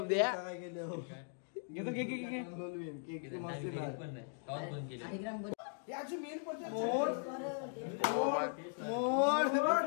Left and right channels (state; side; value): silent; right; digital silence